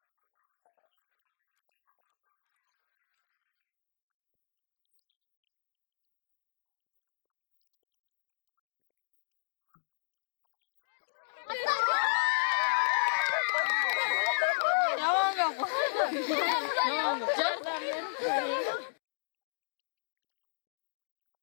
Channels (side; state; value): right; silent; digital silence